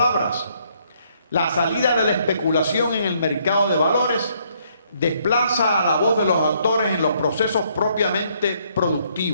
la salida de la especulación en el mercado de valores desplaza a la voz de los autores en los procesos propiamente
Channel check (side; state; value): both; inverted; correlation -0.69